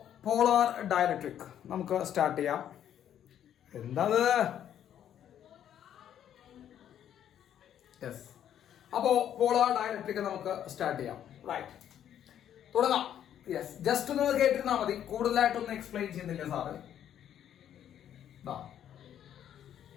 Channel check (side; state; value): right; quieter; 10.2 dB